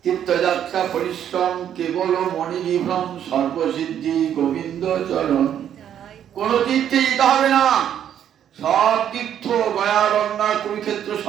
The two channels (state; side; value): quieter; left; 9.8 dB